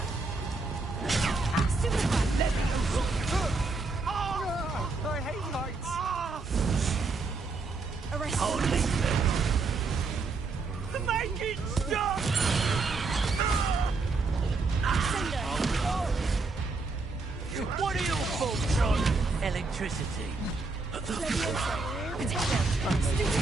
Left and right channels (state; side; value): quieter; left; 3.9 dB